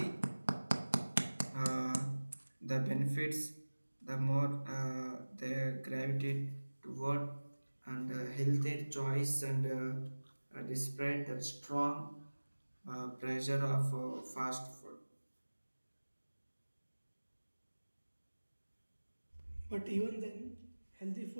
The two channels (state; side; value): inverted; both; correlation -1.00